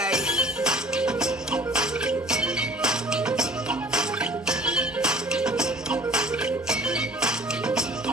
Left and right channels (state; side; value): normal; both; correlation 0.49